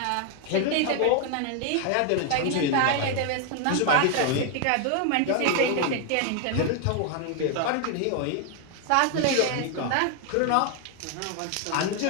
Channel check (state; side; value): different; both; correlation 0.01